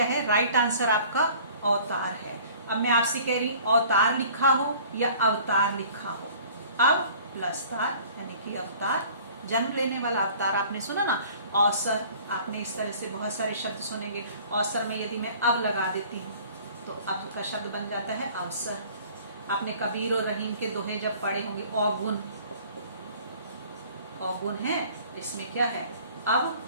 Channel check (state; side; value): inverted; both; correlation -0.50